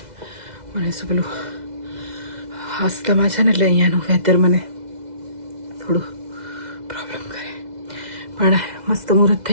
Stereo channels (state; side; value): late; left; 2.0 ms